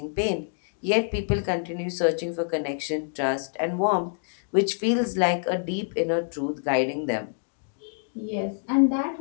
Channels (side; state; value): right; silent; digital silence